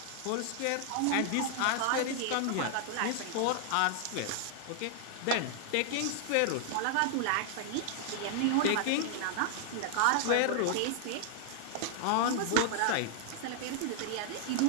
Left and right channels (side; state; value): both; different; correlation -0.01